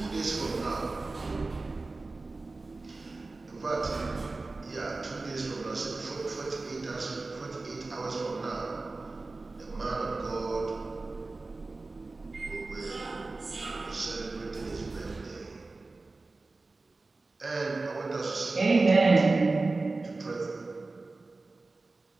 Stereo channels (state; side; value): quieter; left; 3.4 dB